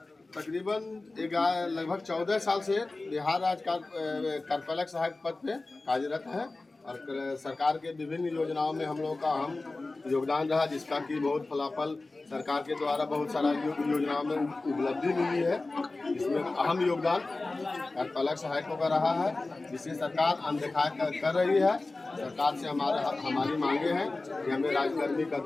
तकरीबन लगभग 14 साल से बिहार राज्य कार्यपालक सहायक पद पे कार्यरत है और सरकार के विभिन्न योजनाओं में हम लोगों का अहम योगदान रहा, जिसका कि बहुत फलाफल सरकार के द्वारा बहुत सारा योजनाओं में उपलब्धि मिली है। इसमें अहम योगदान कार्यपालक सहायकों का रहा है, जिसे सरकार अनदेखा कर रही है। सरकार से हमारी मांगे हैं कि हमें राज्यकर्मी का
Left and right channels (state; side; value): quieter; right; 3.3 dB